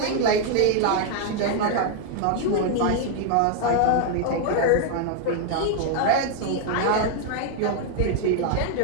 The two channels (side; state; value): both; different; correlation -0.01